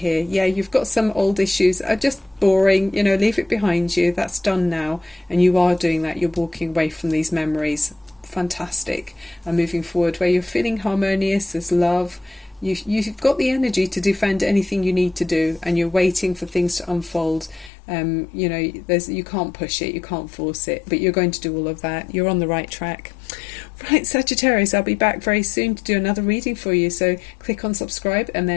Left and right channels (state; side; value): drops out; right; at 17.7 s